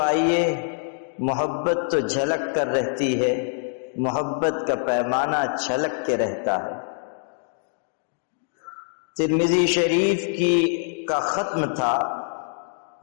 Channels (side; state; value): right; silent; digital silence